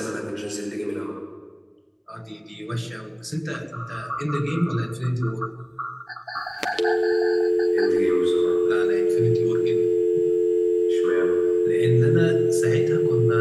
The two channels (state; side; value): identical; both; correlation 1.00